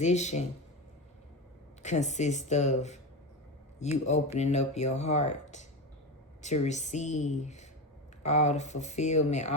consists of you opening up your heart to receive all the fulfillment,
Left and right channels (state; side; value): normal; both; correlation 0.20